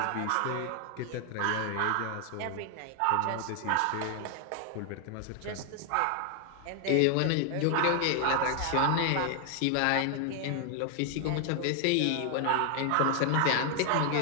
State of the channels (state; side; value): different; both; correlation 0.00